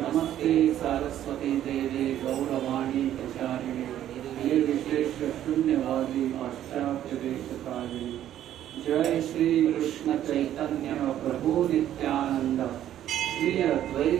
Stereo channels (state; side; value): quieter; left; 11.6 dB